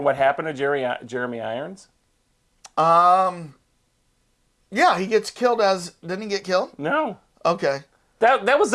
happened to Jeremy Irons? Yeah, he gets killed didn't he get killed? No. Okay. That was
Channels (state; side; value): identical; both; correlation 1.00